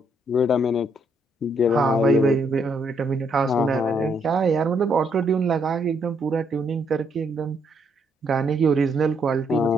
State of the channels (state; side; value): normal; both; correlation 0.73